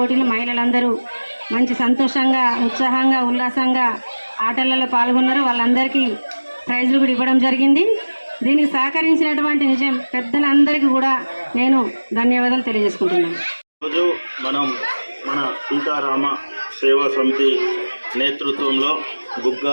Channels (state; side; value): inverted; both; correlation -1.00